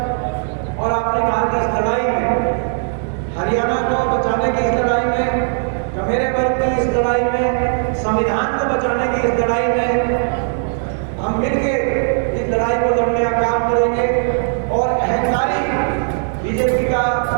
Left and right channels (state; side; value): silent; left; digital silence